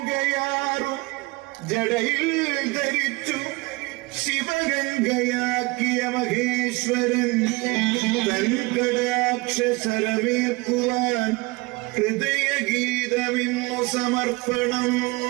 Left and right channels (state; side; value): quieter; left; 24.1 dB